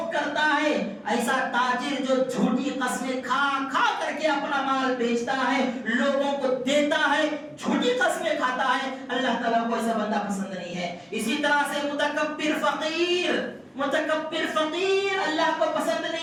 کرتا ہے، ایسا تاجر جو جھوٹی قسمیں کھا کر کے اپنا مال بیچتا ہے، لوگوں کو دیتا ہے، جھوٹی قسمیں کھاتا ہے، اللہ تعالیٰ کو ایسا بندہ پسند نہیں ہے۔ اسی طرح سے متکبر فقیر اللہ کو پسند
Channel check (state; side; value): identical; both; correlation 1.00